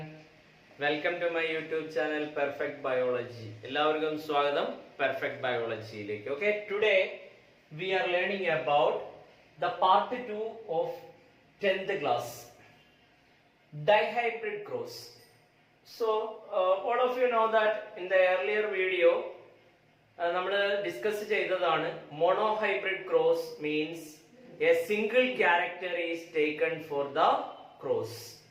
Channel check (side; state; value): both; identical; correlation 1.00